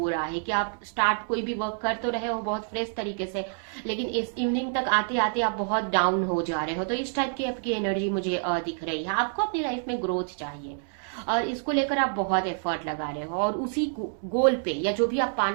रहा है कि आप स्टार्ट कोई भी वर्क कर तो रहे हो बहुत फ्रेश तरीके से, लेकिन इस इवनिंग तक आते आते आप बहुत डाउन हो जा रहे हो। तो इस टाइप की आपकी एनर्जी मुझे दिख रही है। आपको अपनी लाइफ में ग्रोथ चाहिए और इसको लेकर आप बहुत एफर्ट लगा रहे हो, और उसी गोल पे या जो भी आप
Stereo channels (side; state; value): left; silent; 60 dB below the other